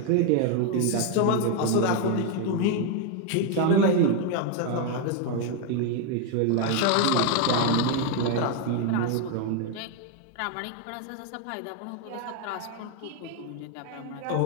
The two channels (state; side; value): different; both; correlation 0.01